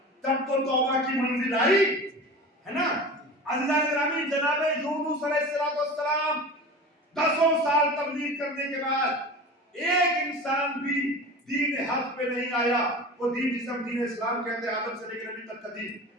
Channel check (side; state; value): both; normal; correlation 0.34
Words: تب تو توبہ کی منزل آئی ہے نا. اللہ گرامی جناب یونس علیہ السلام 10 سال تبلیغ کرنے کے بعد ایک انسان بھی دین حق پہ نہیں آیا. وہ دین جسے ہم دین اسلام کہتے ہیں, آدم سے لے کر نبی تک کا دین,